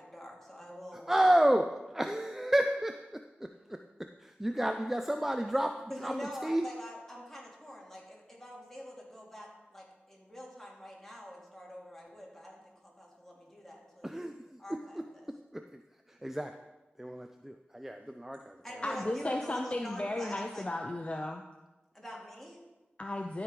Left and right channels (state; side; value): normal; both; correlation 0.97